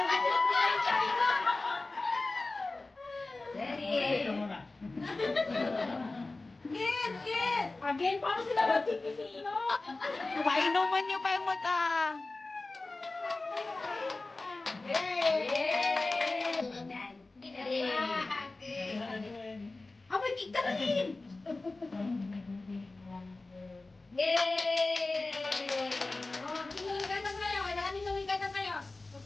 Again, paano sila magkikisino? Painuman niyo pa yung mata. Abay, kita rin! Yay! Oh, hinuwigan na kayo. Kailangan hinuwigan na kayo.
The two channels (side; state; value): right; quieter; 3.3 dB